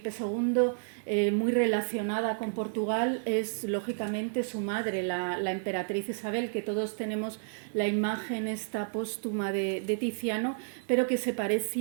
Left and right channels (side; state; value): left; silent; 57 dB below the other